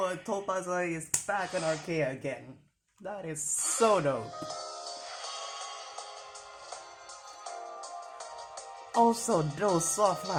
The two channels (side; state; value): both; identical; correlation 1.00